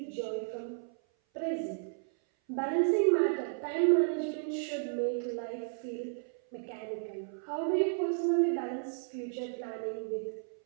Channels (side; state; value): left; silent; 56 dB below the other